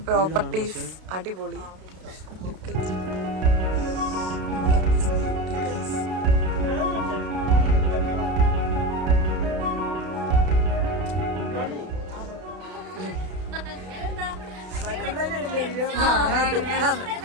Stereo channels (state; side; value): late; left; 32 ms